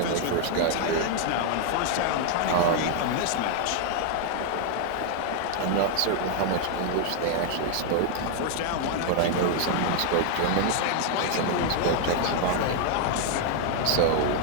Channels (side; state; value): both; different; correlation 0.00